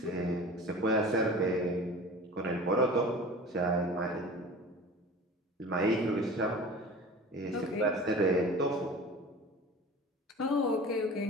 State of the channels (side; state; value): both; normal; correlation 0.39